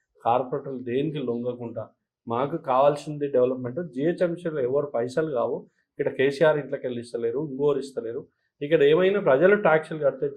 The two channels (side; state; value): both; identical; correlation 1.00